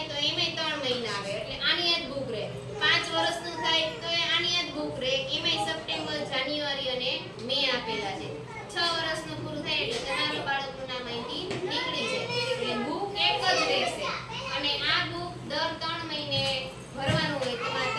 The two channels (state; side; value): identical; both; correlation 1.00